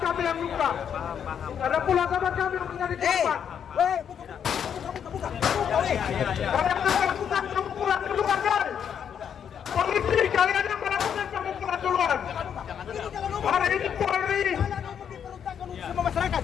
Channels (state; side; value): quieter; right; 8.2 dB